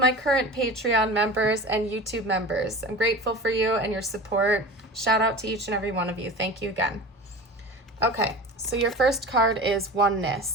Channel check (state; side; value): normal; both; correlation 0.34